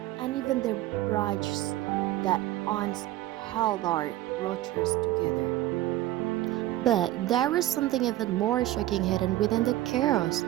and even the bridges that once held our rotors together. But there was something even more shocking hidden within the chaos.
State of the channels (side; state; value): left; quieter; 15.3 dB